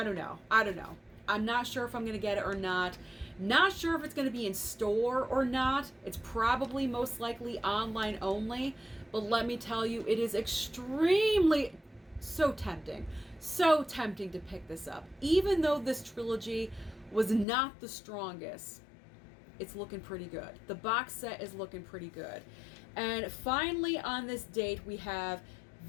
don't know. I'm not sure if I'm going to get it or not. Not sure if it's going to be in store or not. It's probably most likely online only. But let me tell you, it is extremely so tempting to pick this up. Even though this trilogy was not the strongest, it's looking pretty good. The box set is looking pretty good. And finally on this date, we have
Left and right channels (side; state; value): right; drops out; at 17.4 s